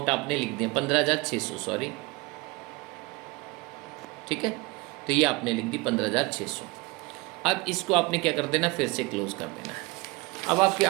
आपने लिख दिया 15,600, सॉरी, ठीक है, तो ये आपने लिख दी 15,600। अब इसको आपने क्या कर देना, फिर से क्लोज कर देना है। अब आपकी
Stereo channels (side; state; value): left; quieter; 24.1 dB